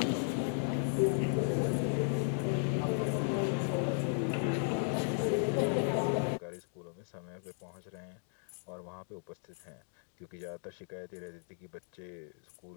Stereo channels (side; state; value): right; silent; digital silence